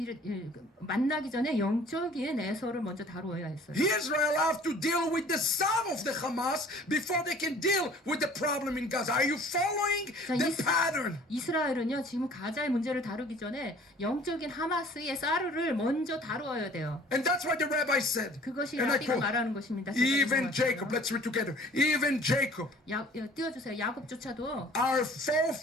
만나기 전에 영적인 에서를 먼저 다루어야 했어요. Israel have to deal with the son of the Hamas before they can deal with the problem in Gaza. Are you following the pattern? 이스라엘은요 지금 가자의 문제를 다루기 전에 영적인 하마스의 사르를 먼저 다루어야 돼요. And that's why the rabbi said, 그것이 and I 라비가 quote, 말하는 것입니다. even Jacob, let's read together, even Jacob, 띄워주세요. 야곱조차도 our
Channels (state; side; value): normal; both; correlation 0.50